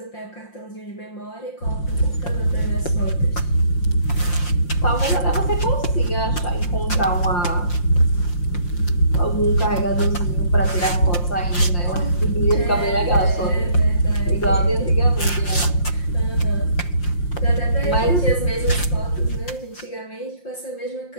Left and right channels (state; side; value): late; right; 5.7 ms